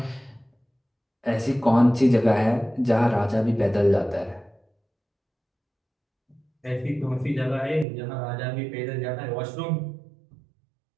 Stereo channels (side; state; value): left; drops out; at 7.9 s